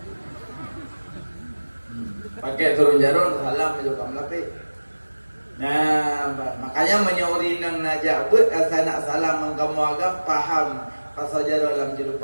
Pakai turun jarum salam juga melapi. Nah, makanya menyauri nang najak buat asal nak salam mengkamu agam paham pasal jarum dalam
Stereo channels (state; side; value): inverted; both; correlation -1.00